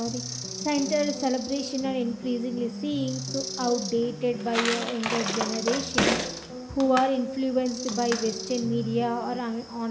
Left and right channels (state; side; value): identical; both; correlation 1.00